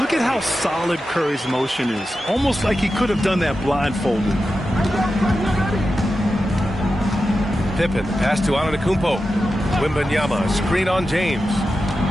at how solid Curry's motion is. Almost like he could have done that blindfolded. Pippen. Pass to Antetokounmpo. Wembanyama. Screen on James.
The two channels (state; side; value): normal; both; correlation 0.91